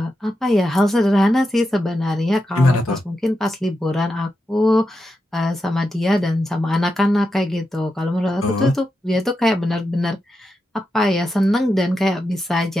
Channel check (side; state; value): both; normal; correlation 0.87